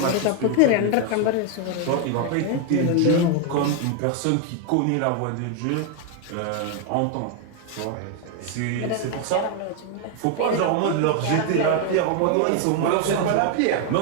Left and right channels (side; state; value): both; different; correlation 0.00